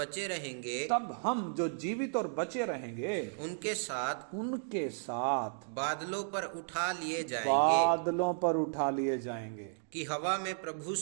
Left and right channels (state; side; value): silent; left; digital silence